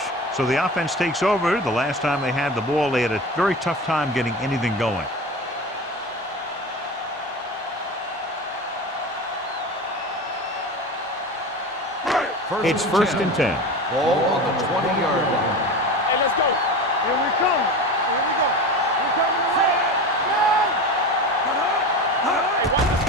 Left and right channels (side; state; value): both; normal; correlation 0.29